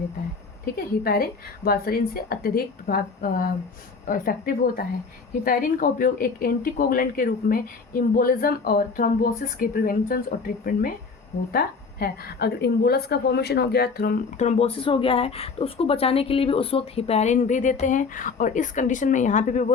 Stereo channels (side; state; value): right; quieter; 4.7 dB